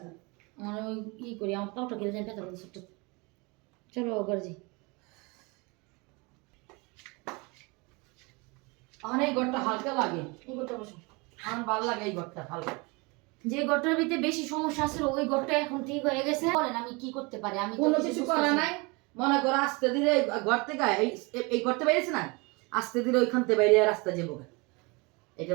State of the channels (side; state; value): left; quieter; 27.7 dB